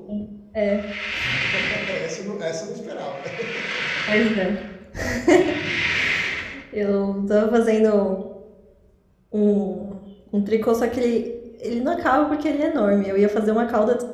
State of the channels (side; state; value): both; identical; correlation 1.00